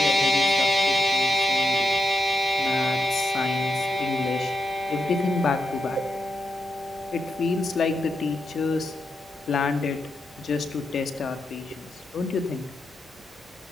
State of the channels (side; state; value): both; normal; correlation 0.84